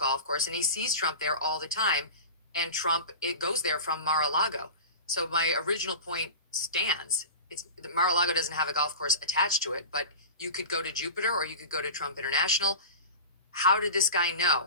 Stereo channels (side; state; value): both; inverted; correlation -0.31